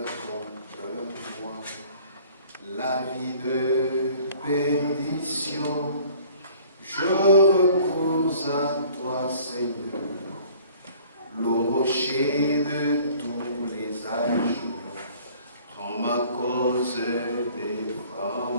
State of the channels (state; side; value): inverted; both; correlation -0.53